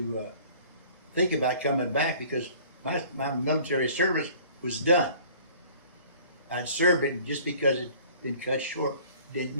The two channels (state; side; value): inverted; both; correlation -0.50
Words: think about coming back because my military service was done. I'd served it, and just because it'd been cut short didn't